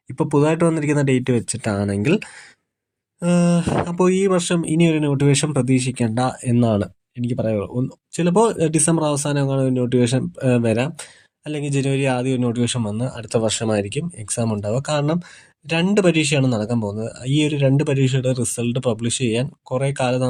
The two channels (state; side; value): identical; both; correlation 1.00